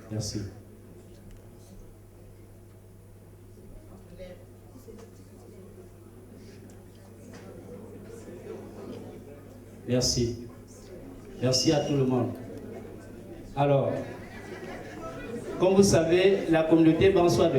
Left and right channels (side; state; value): both; identical; correlation 1.00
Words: Merci. Merci. Merci à tout le monde. Alors, comme vous savez, la communauté Bansois